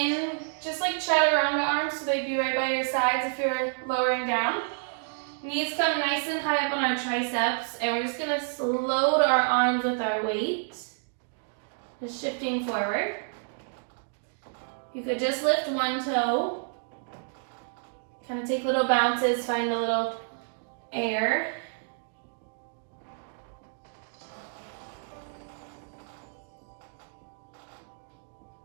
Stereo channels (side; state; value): left; silent; digital silence